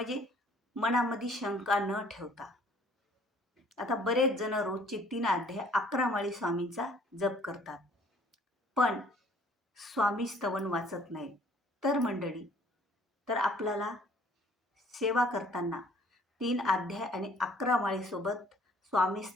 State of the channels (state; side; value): normal; both; correlation 0.57